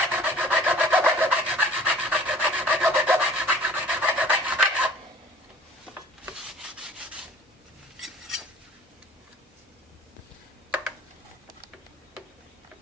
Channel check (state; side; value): normal; both; correlation 0.49